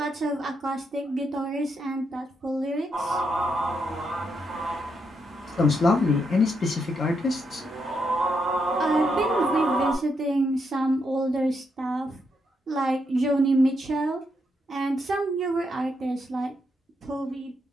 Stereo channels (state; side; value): normal; both; correlation 0.80